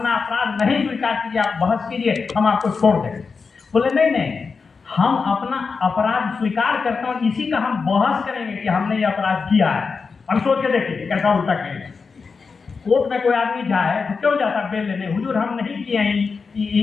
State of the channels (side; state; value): right; quieter; 5.0 dB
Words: अपराध नहीं स्वीकार कीजिए, आप बहस कीजिए, हम आपको छोड़ देंगे। बोले नहीं नहीं, हम अपना अपराध स्वीकार करते हैं, इसी का हम बहस करेंगे कि हमने ये अपराध किया है। हम सोच के देखिए कैसा उल्टा करेंगे। कोर्ट में कोई आदमी जाए तो क्यों जाता बेल लेने, हुजूर हम नहीं किए हैं